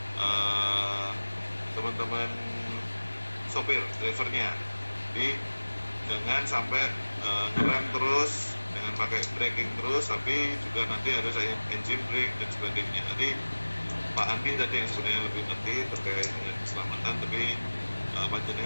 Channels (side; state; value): both; inverted; correlation -1.00